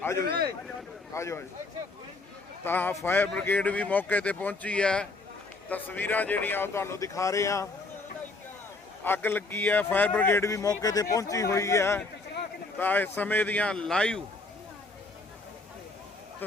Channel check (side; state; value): right; quieter; 3.4 dB